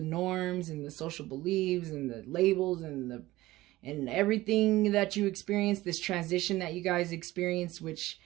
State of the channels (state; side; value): quieter; left; 17.5 dB